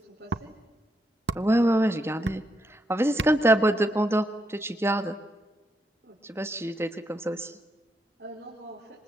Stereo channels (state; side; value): normal; both; correlation 0.80